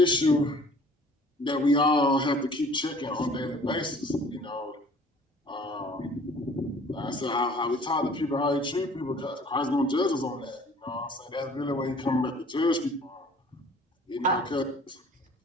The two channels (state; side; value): normal; both; correlation 0.52